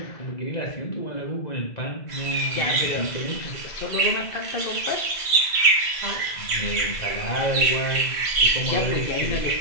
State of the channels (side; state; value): right; late; 2.0 ms